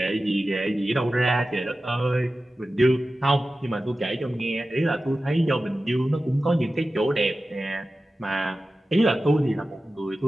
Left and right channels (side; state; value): both; normal; correlation 0.94